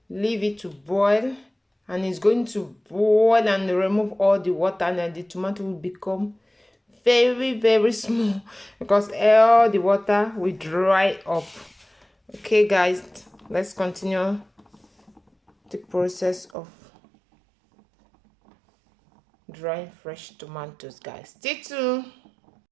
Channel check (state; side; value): drops out; left; at 16.5 s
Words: leave it to boil, and it's going to boil and remove all the water, and then the tomato will become very small because all the water will dry up. Okay guys, let's continue the process of drying fresh tomatoes, guys. Stay tuned.